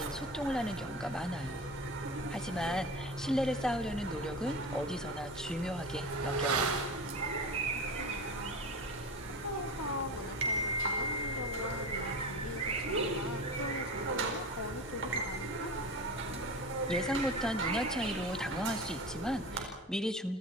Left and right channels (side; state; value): both; normal; correlation 0.30